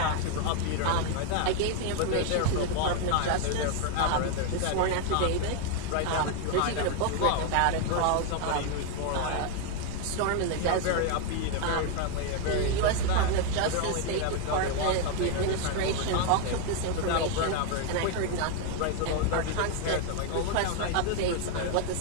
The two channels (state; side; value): different; both; correlation 0.01